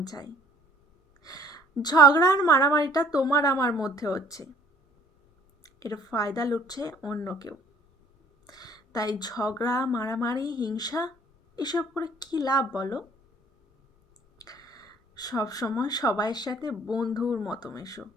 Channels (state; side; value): normal; both; correlation 0.57